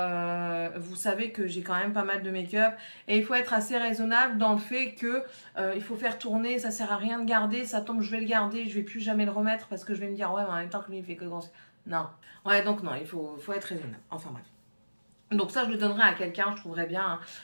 vous savez que j'ai quand même pas mal de make-up et il faut être assez raisonnable dans le fait que il faut faire tourner, ça sert à rien de garder, ça tombe, je vais le garder, je vais plus jamais le remettre parce que je vais me dire ouais, mais en même temps que lui il fait que grand. Non, ouais, donc non, il faut être raisonnable. Enfin bref. Donc ça, je le donnerai à quelqu'un, je trouverais bien, hein,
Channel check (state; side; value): inverted; both; correlation -1.00